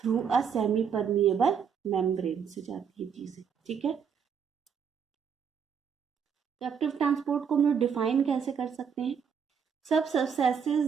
through a semi permeable membrane से जाती है चीजें। ठीक है। एक्टिव ट्रांसपोर्ट को हम लोग डिफाइन कैसे कर सकते हैं, सब substances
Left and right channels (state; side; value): quieter; left; 7.0 dB